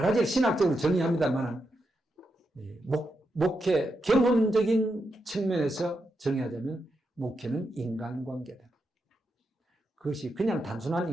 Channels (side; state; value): both; normal; correlation 0.85